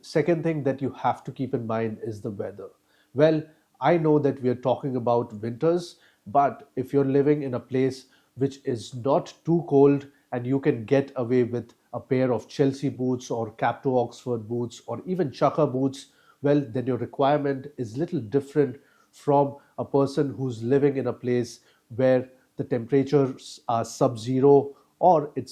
Second thing that you have to keep in mind is the weather. Well, I know that we are talking about winters, but if you're living in a place which is not too cold and you can get away with a pair of Chelsea boots or Cap to Oxford boots or even Chukka boots, well, then your requirement is little different from a person who's living in a place where the temperatures are sub-zero or it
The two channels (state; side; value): identical; both; correlation 1.00